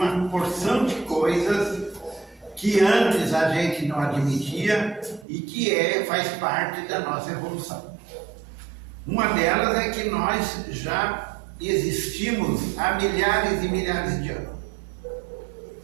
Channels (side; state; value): left; drops out; at 5.2 s